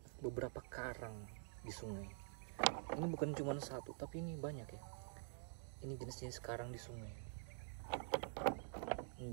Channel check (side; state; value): left; silent; digital silence